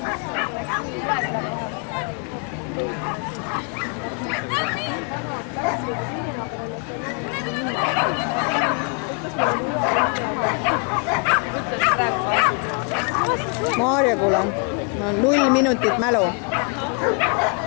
Maarja, kuule, ma 0 minutit mälu.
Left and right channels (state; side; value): quieter; right; 37.4 dB